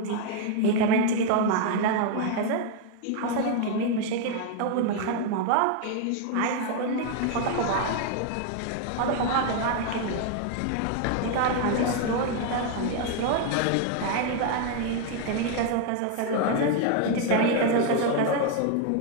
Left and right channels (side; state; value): both; different; correlation 0.00